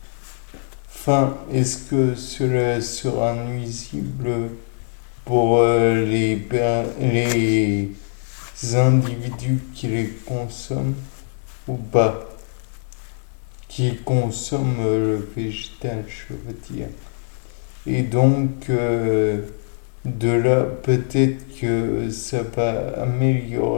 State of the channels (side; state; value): right; silent; digital silence